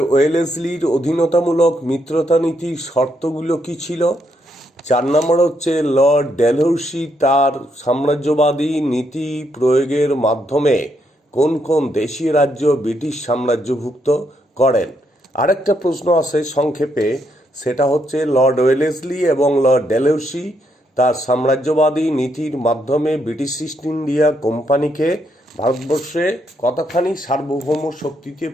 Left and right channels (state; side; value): normal; both; correlation 0.76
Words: ওয়েলেসলির অধীনতামূলক মিত্রতা নীতির শর্তগুলো কি ছিল। 4 নম্বর হচ্ছে লর্ড ডেলহৌসি তার সাম্রাজ্যবাদী নীতি প্রয়োগের মাধ্যমে কোন কোন দেশীয় রাজ্য ব্রিটিশ সাম্রাজ্যভুক্ত করেন। আরেকটা প্রশ্ন আছে সংক্ষেপে, সেটা হচ্ছে লর্ড ওয়েলেসলি এবং লর্ড ডেলহৌসি তার সাম্রাজ্যবাদী নীতির মাধ্যমে ব্রিটিশ ইস্ট ইন্ডিয়া কোম্পানিকে ভারতবর্ষে কতখানি সার্বভৌম শক্তিতে